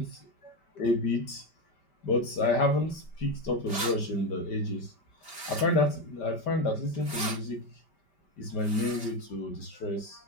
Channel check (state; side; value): late; right; 5.1 ms